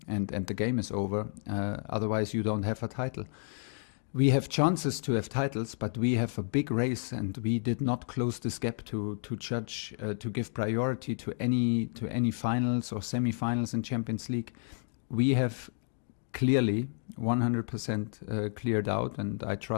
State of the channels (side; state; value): right; silent; digital silence